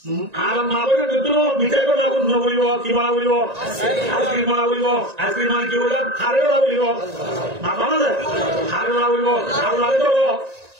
আর মা বলে দুটো মিঠাই কথা বলিব কি বলা বলিব আইসক্রিম বলা বলিব আইসক্রিম মানে কি বললাম হারে বলা বলিব না বলা হারে বলা বলিব আর লাগে তো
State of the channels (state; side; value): late; left; 1.9 ms